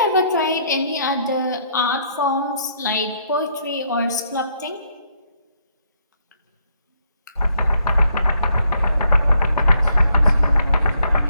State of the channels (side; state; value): both; inverted; correlation -0.71